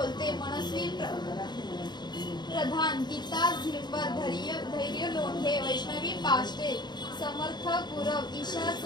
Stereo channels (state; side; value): late; right; 0.21 ms